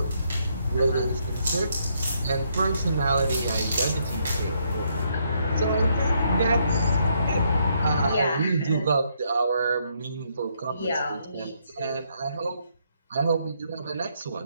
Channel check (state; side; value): inverted; both; correlation -0.73